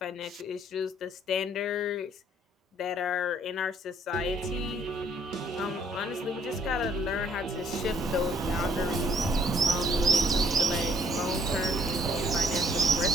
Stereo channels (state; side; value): normal; both; correlation 0.64